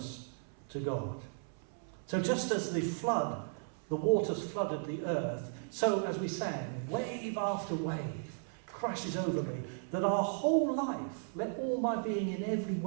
to God. So just as the flood, the waters flooded the earth, so as we sang, wave after wave crashes over me, that our whole life, let all my being in every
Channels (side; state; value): left; silent; 54 dB below the other